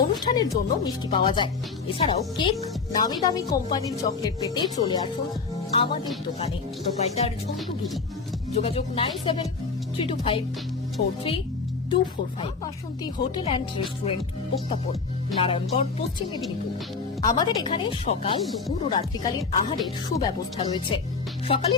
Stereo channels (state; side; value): quieter; right; 4.7 dB